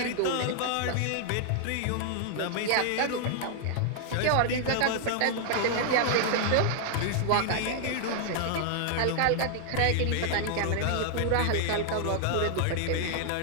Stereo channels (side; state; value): both; different; correlation -0.01